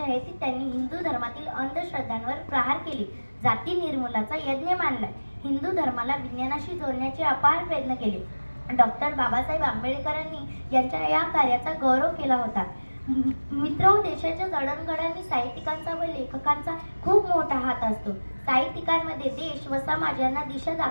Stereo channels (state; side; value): inverted; both; correlation -1.00